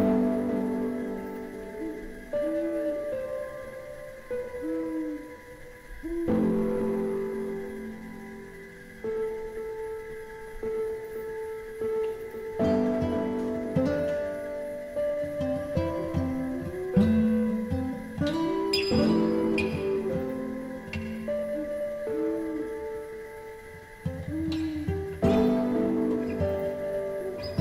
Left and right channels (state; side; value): identical; both; correlation 1.00